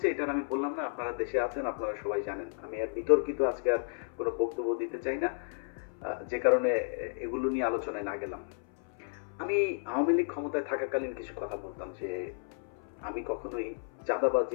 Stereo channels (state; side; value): silent; right; 56 dB below the other